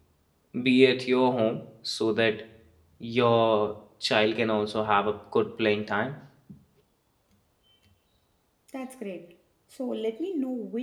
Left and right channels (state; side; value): identical; both; correlation 1.00